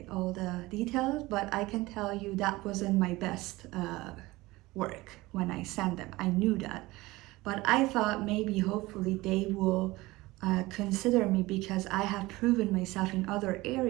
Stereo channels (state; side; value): quieter; left; 20.2 dB